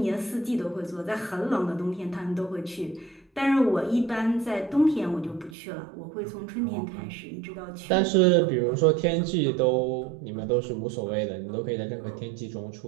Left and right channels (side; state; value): left; drops out; at 5.6 s